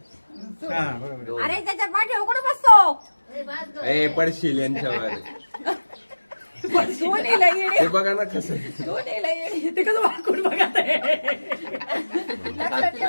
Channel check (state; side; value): inverted; both; correlation -1.00